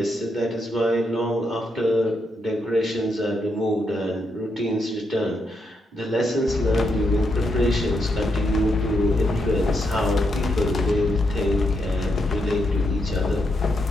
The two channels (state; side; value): normal; both; correlation 0.81